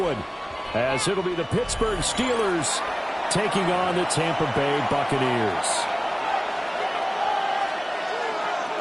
as it'll be the Pittsburgh Steelers taking on the Tampa Bay Buccaneers.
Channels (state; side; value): identical; both; correlation 1.00